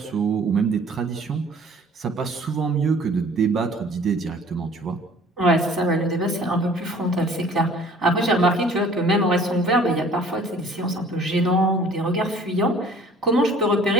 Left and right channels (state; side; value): normal; both; correlation 0.51